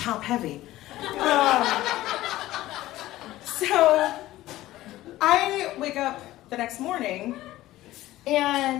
heavy. So I wake up the next morning,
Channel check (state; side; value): quieter; right; 15.9 dB